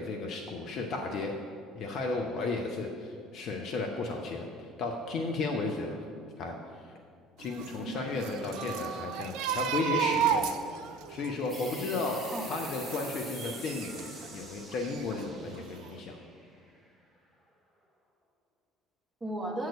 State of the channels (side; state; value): both; normal; correlation 0.42